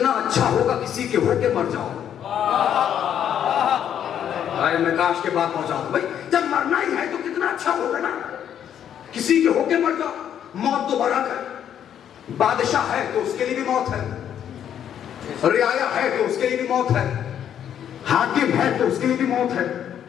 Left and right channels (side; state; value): right; quieter; 9.5 dB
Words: اچھا ہوگا کسی کے ہو کے مر جاؤ. میں کاش کے بات پہنچا دوں بھائی, جب مرنا ہی ہے تو کتنا اچھا ہوگا نا کسی کے ہو کے مر جاؤ. موت تو بڑا ہے, بادشاہ ہے تو اس کے لیے بھی موت ہے, رعایا ہے تو اس کے لیے بھی موت ہے, حاکم ہے تو اس کے لیے بھی موت ہے,